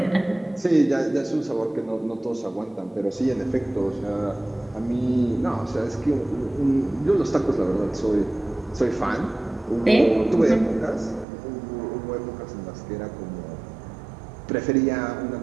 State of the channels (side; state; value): left; drops out; at 11.2 s